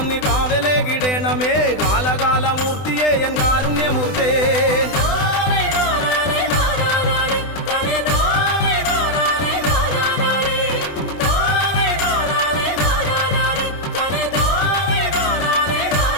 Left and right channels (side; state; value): right; late; 20 ms